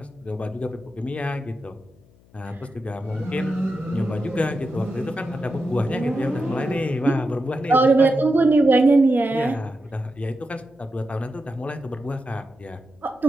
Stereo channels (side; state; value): left; noise; hum, 29 dB below the sound